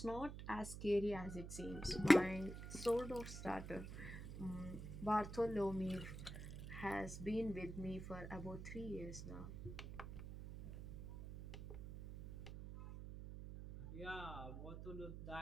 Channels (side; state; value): right; noise; hum, 9 dB below the sound